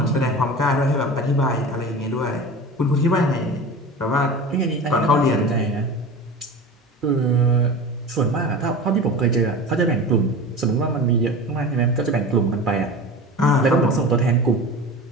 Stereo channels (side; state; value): both; normal; correlation 0.33